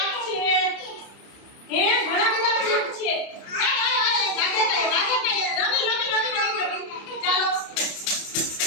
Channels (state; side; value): late; right; 30 ms